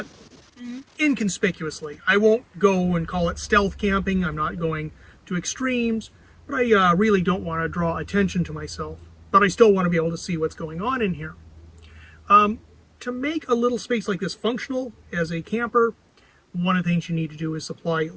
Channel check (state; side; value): identical; both; correlation 1.00